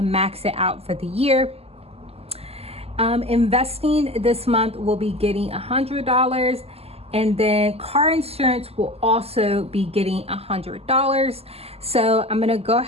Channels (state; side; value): late; left; 0.29 ms